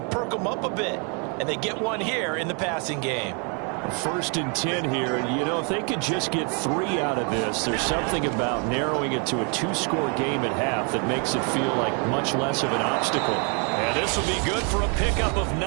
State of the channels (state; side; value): quieter; left; 36.6 dB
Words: perk them up a bit. And they get one here in the passing game. 1st and 10 here. And, you know, if they could just get 3 out of this, there's something about narrowing it to a 2-score game at half that makes it feel like much less of an obstacle. And this will be good for a pickup of